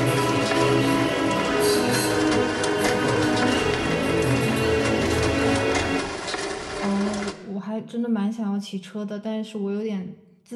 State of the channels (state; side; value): identical; both; correlation 1.00